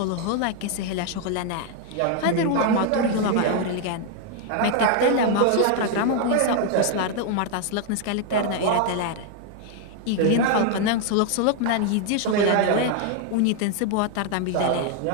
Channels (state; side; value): different; both; correlation 0.00